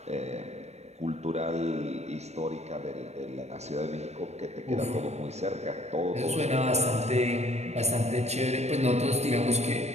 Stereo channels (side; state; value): left; late; 0.32 ms